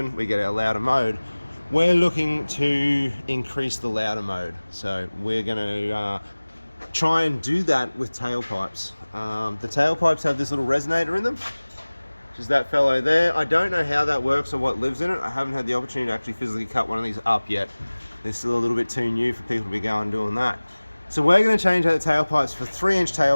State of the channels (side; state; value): both; inverted; correlation -1.00